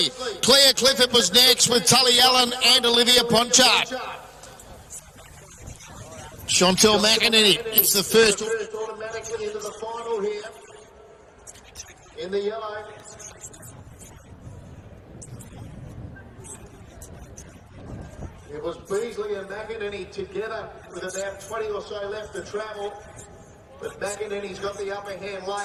Claire Clifford was next with Tully Allen and Olivia Ponchard. Chantel McEnany, it's the first. Automatically into the final here. In the yellow. It was Beasley and McEnany together with about 20 or so left to travel. But McEnany's got the upper hand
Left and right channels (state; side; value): identical; both; correlation 1.00